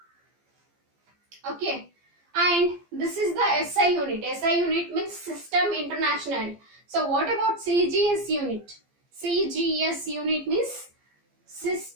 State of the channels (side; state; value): left; late; 15 ms